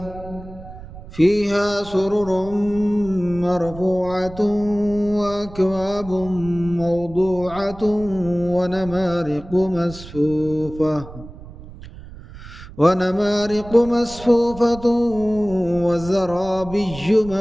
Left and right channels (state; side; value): noise; right; rumble, 16 dB below the sound